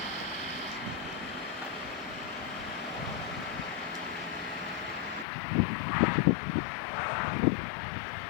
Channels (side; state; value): right; drops out; at 5.2 s